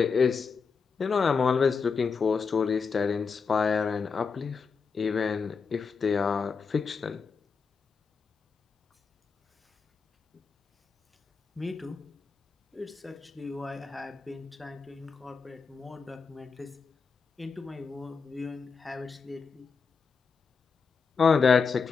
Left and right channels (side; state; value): right; quieter; 5.3 dB